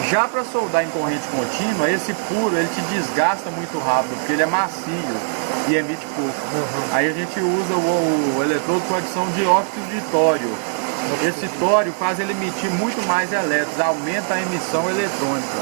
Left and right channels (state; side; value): silent; left; digital silence